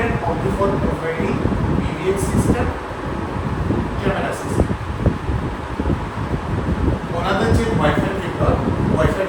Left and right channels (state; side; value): identical; both; correlation 1.00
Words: only for providing PBX system, camera system. ওনাদের যে ওয়াইফাই